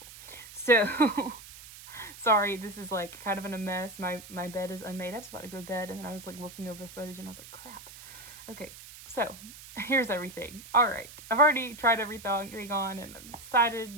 So sorry, this is like kind of in a mess. My bed is unmade. I was about to go to bed and then I was like looking over footage and I was like, crap. Okay, so here's everything. All right, I've already tried everything on and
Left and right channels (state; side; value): noise; right; hiss, 16 dB below the sound